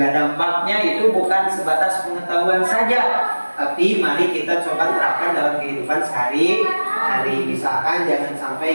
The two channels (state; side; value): inverted; both; correlation -1.00